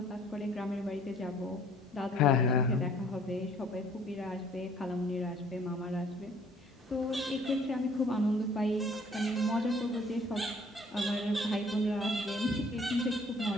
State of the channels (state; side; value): normal; both; correlation 0.57